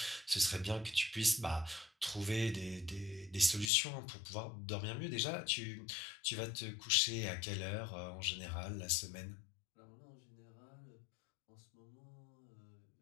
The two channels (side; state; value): right; drops out; at 3.7 s